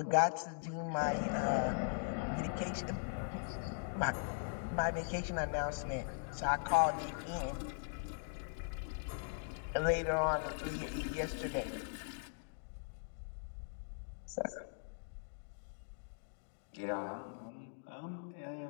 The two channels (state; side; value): silent; right; digital silence